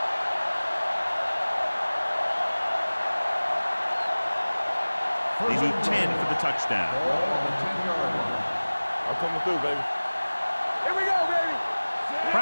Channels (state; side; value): inverted; both; correlation -1.00